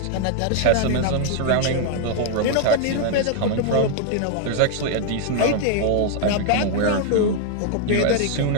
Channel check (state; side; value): different; both; correlation 0.00